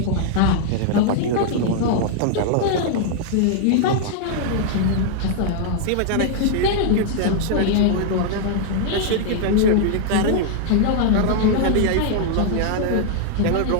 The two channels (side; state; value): both; different; correlation -0.01